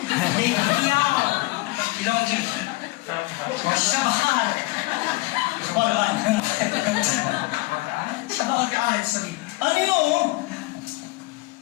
And you know,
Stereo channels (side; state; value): right; quieter; 21.8 dB